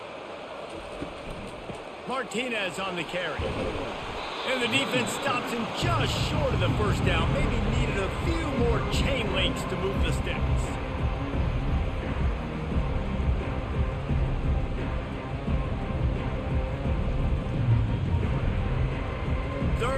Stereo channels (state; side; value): identical; both; correlation 1.00